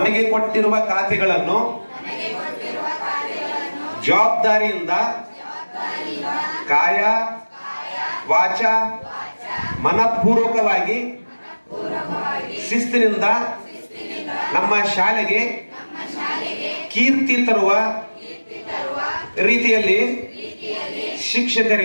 ಕೊಟ್ಟಿರುವ ಖಾತೆಗಳನ್ನು ಜವಾಬ್ದಾರಿಯಿಂದ ಕಾಯ ವಾಚ ಮನಪೂರ್ವಕವಾಗಿ ಶಿಸ್ತಿನಿಂದ ನಮ್ಮ ಶಾಲೆಗೆ ಕೀರ್ತಿ ತರುವ ರೀತಿಯಲ್ಲಿ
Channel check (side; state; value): both; inverted; correlation -1.00